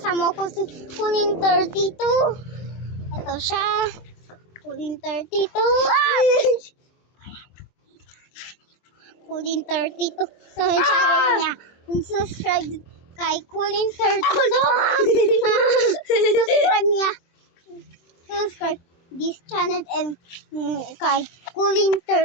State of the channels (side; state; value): right; late; 23 ms